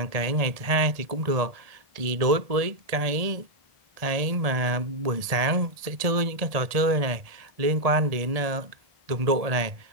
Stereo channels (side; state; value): left; late; 1.7 ms